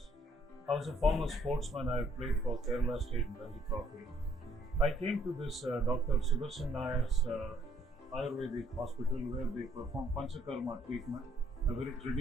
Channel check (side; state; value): both; normal; correlation 0.66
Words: I was a former sportsman. I played for Kerala State in Ranji Trophy. I came to this Dr. Sudarshan Nayar's Ayurvedic hospital where they perform Panchakarma treatment, a very